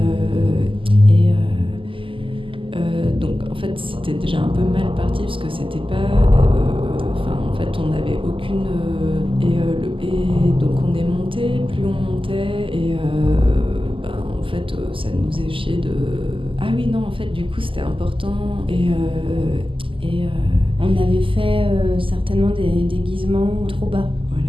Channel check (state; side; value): late; left; 0.25 ms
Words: donc en fait c'était déjà un peu mal parti parce que c'était pas en fait on n'avait aucune et donc on est monté, plus on montait et en fait ça nous faisait chier de ah oui non en fait du coup c'était important on avait fait certainement des déguisements trop bas.